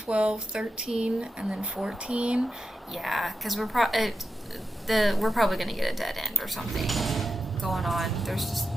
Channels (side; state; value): both; normal; correlation 0.89